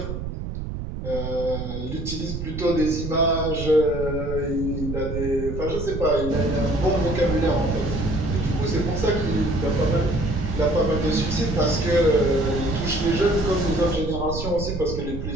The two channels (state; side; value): noise; right; rumble, 6 dB below the sound